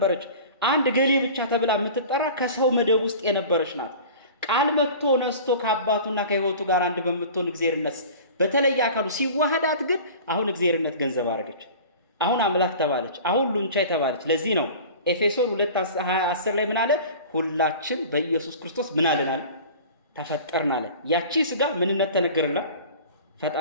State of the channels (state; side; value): inverted; both; correlation -0.40